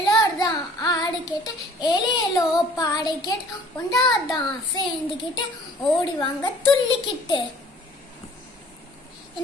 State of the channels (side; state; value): both; normal; correlation 0.51